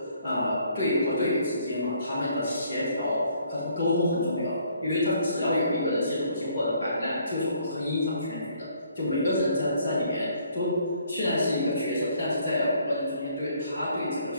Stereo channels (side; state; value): both; inverted; correlation -0.64